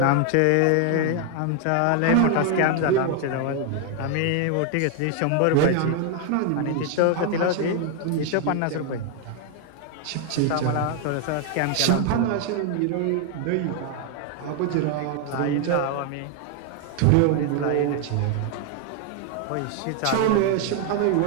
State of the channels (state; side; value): different; both; correlation 0.00